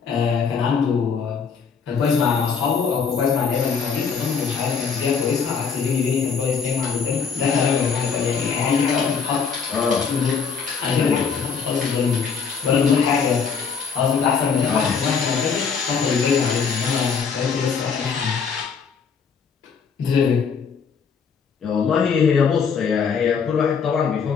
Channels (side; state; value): right; quieter; 6.0 dB